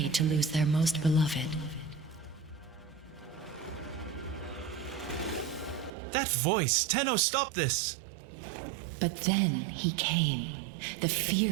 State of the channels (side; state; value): left; drops out; at 5.9 s